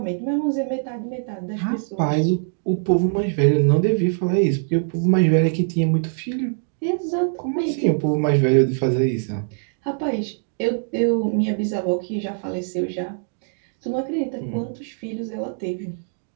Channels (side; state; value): left; silent; digital silence